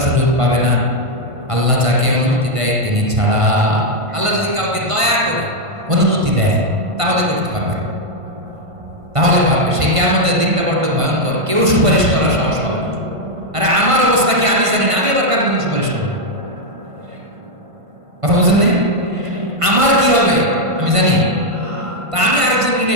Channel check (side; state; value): left; late; 1.5 ms